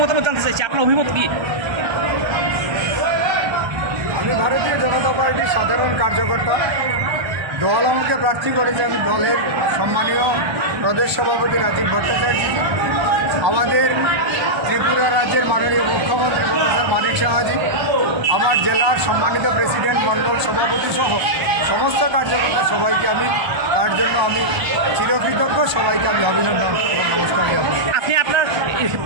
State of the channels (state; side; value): late; left; 1.3 ms